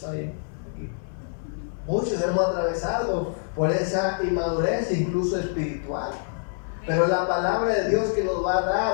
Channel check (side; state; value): right; silent; 58 dB below the other